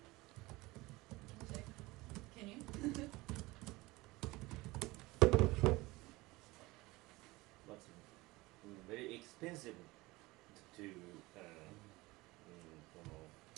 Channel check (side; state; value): left; quieter; 21.2 dB